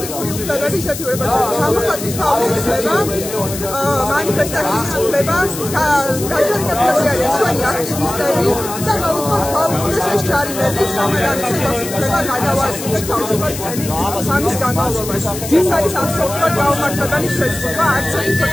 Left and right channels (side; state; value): left; noise; hiss, 9 dB below the sound